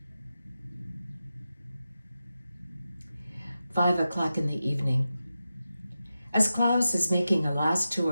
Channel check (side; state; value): both; inverted; correlation -0.92